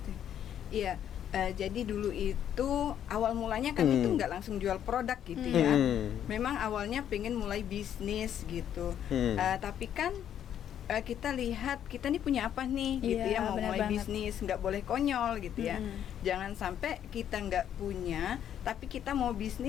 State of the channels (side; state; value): right; quieter; 9.9 dB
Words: Iya. Jadi dulu itu awal mulanya kami tuh nggak langsung jual produk gitu ya. Memang awalnya pengen mulai bisnis gitu. Tapi kan kita lihat kita nih punya apa nih gitu ya, mau mulai bisnis, nggak boleh konyol gitu ya. Jangan sampai kita nggak punya tapi kita mau